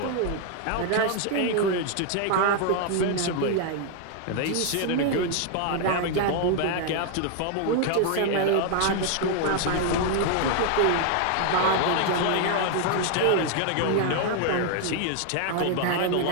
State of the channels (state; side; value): different; both; correlation 0.00